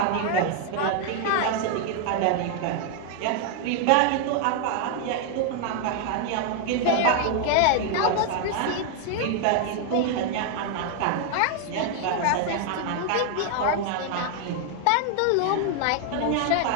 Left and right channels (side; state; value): both; different; correlation 0.00